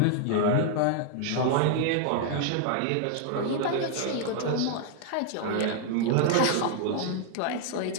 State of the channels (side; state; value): both; different; correlation 0.00